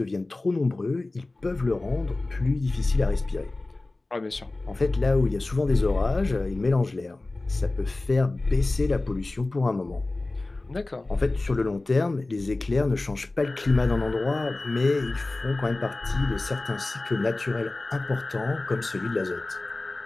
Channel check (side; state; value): right; quieter; 3.0 dB